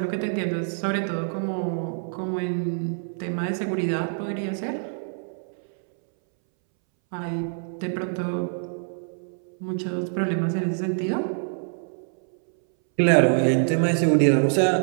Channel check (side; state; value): left; silent; 62 dB below the other